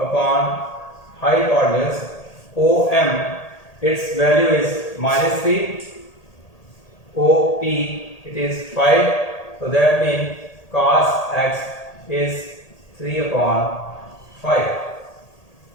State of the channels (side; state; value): right; late; 1.8 ms